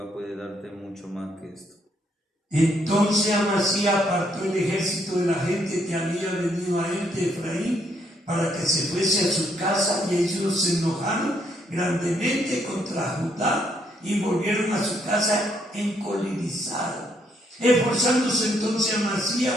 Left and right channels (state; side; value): normal; both; correlation 0.72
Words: puede darte mucho más que esto. Entonces Amasías apartó el ejército de la gente que había venido a él de Efraín para que se fuese a su casa, y ellos se enojaron grandemente contra Judá y volvieron a su casa encolerizados. Esforzándose entonces Amasías,